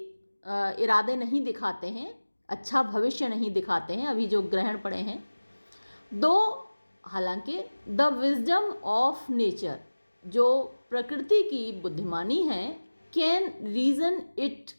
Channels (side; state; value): both; inverted; correlation -1.00